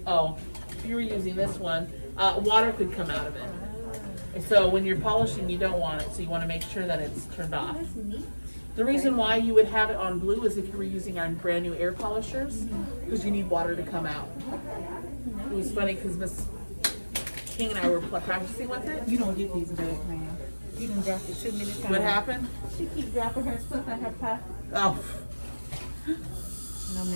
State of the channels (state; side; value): inverted; both; correlation -1.00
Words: Oh, if you were using this one, water could come out of it. So when you're polishing, you don't want it. So you want to make sure that it's turned off. The reason why you would have it on blue is if you were using our brand new air polishers, because you need water to come out. It was funny because Miss King and I were practicing with it. You don't get these back, man. You done dropped it too many times. What happened? She keep dropping her stuff in her pot. Oh, No,